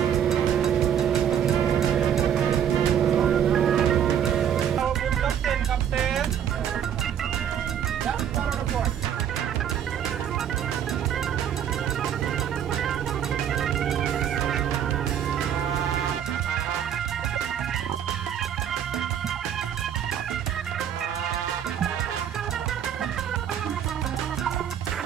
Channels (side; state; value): left; quieter; 9.3 dB